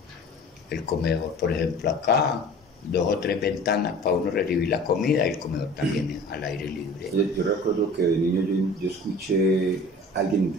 por ejemplo acá 2 o 3 ventanas para uno recibir la comida, y el comedor también al aire libre. Yo recuerdo que de niño yo escuché a alguien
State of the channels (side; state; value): both; normal; correlation 0.43